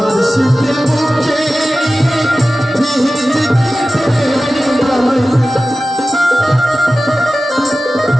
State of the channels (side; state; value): both; normal; correlation 0.95